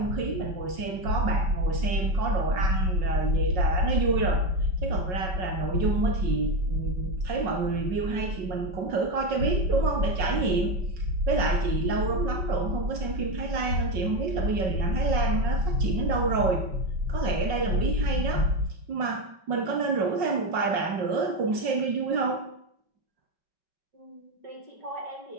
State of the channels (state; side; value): late; left; 5.5 ms